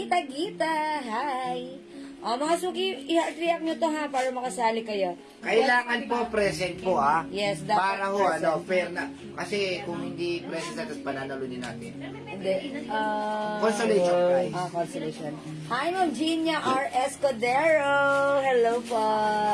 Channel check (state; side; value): identical; both; correlation 1.00